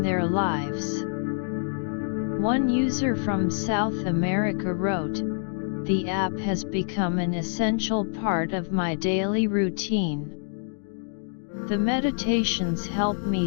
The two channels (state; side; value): silent; right; digital silence